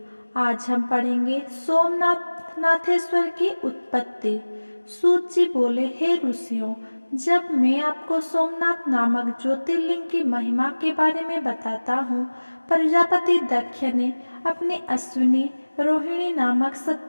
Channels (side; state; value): both; inverted; correlation -1.00